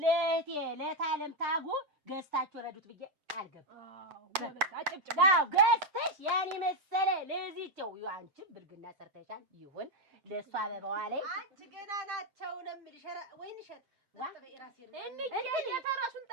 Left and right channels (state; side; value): late; left; 7.6 ms